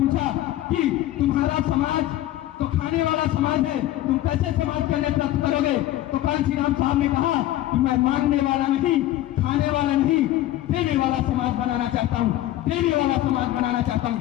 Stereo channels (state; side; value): quieter; right; 14.4 dB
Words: कि तुम्हारा समाज तो खाने वाला समाज है, तुम कैसे समाज का नेतृत्व करोगे? तो कांसीराम साहब ने कहा कि मैं मांगने वाला नहीं, खाने वाला नहीं, देने वाला समाज बनाना चाहता हूँ, देने वाला समाज बनाना चाहता हूँ।